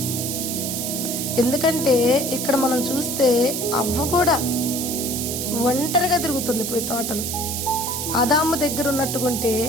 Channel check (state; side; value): noise; right; hiss, 3 dB below the sound